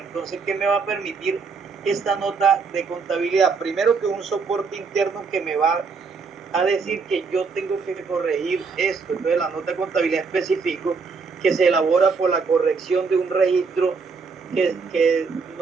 ¿qué me va a permitir esta nota de contabilidad? Primero, que un soporte interno que me va a decir que yo tengo que corregir esto. Entonces, la nota de contabilidad específico que se elabora por la corrección de un registro que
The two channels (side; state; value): left; quieter; 4.9 dB